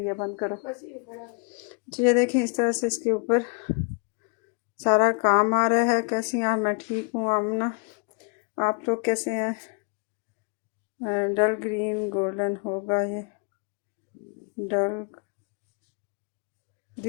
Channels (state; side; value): quieter; right; 35.3 dB